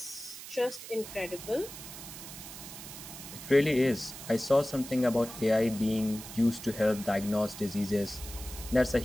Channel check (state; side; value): noise; right; hiss, 12 dB below the sound